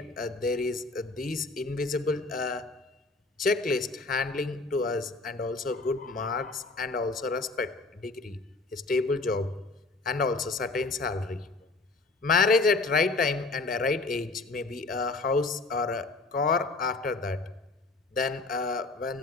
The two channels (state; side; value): quieter; right; 3.6 dB